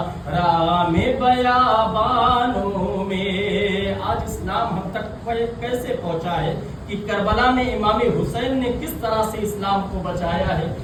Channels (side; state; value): both; identical; correlation 1.00